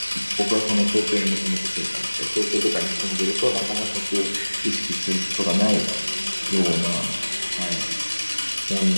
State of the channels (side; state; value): both; inverted; correlation -1.00